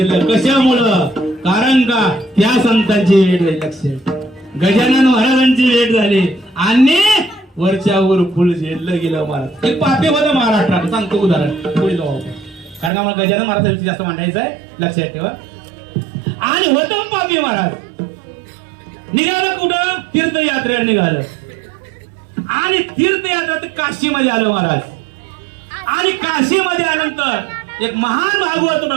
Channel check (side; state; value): left; drops out; at 12.9 s